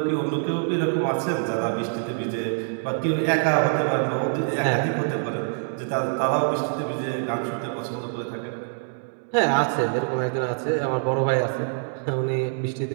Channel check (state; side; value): silent; left; 62 dB below the other